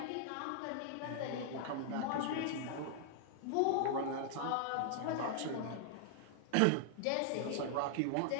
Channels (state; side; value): different; both; correlation -0.01